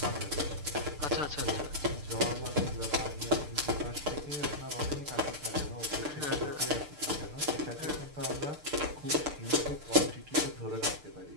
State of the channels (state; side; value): late; left; 6.7 ms